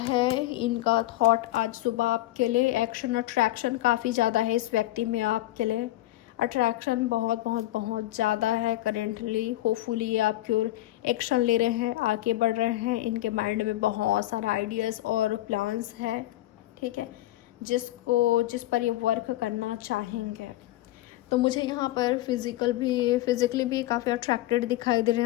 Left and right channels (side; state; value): right; quieter; 16.3 dB